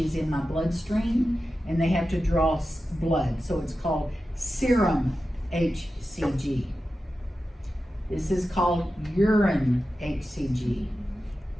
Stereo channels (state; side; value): normal; both; correlation 0.92